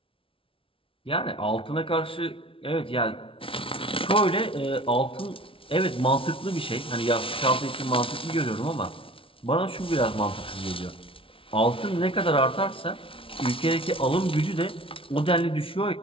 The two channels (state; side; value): late; right; 0.26 ms